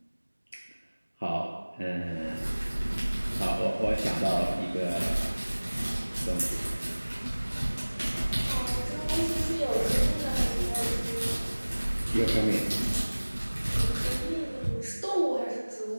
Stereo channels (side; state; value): both; inverted; correlation -1.00